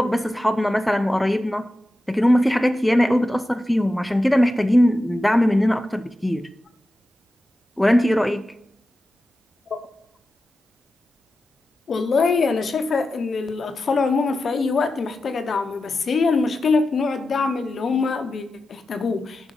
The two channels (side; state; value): both; normal; correlation 0.92